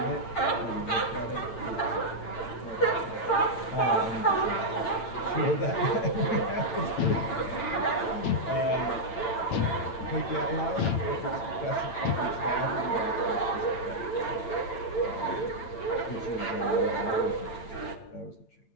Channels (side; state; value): right; late; 8.9 ms